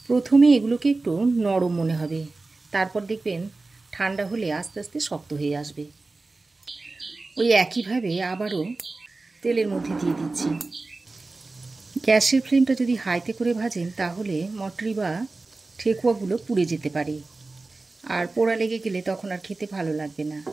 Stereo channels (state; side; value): quieter; left; 3.5 dB